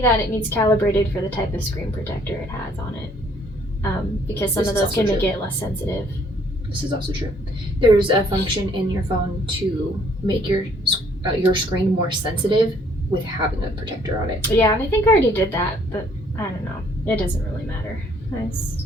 that it needs calibrated for the type of screen protector it has on it. Because some of those can make it less sensitive. This is also true. There's a function in your phone to make your screen more sensitive with having a protector on it. Yeah, and I think I already did that, but I don't know. It doesn't really matter.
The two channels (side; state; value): both; normal; correlation 0.63